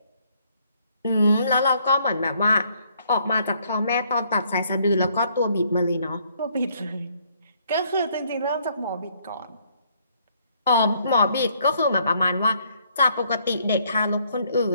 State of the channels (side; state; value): both; inverted; correlation -0.67